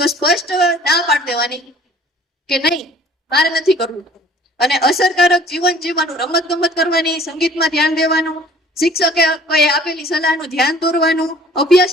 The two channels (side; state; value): both; normal; correlation 0.52